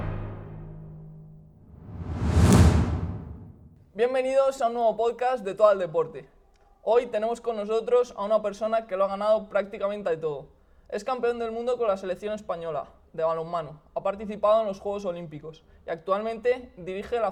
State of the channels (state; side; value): identical; both; correlation 1.00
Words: Bienvenidos a un nuevo podcast de Todo al Deporte. Hoy tenemos con nosotros a una persona que lo ha ganado prácticamente de todo. Es campeón del mundo con la selección española de balonmano, ha participado en los Juegos Olímpicos y actualmente dirige la